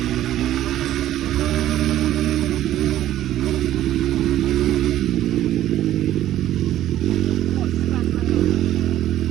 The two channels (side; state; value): left; quieter; 13.0 dB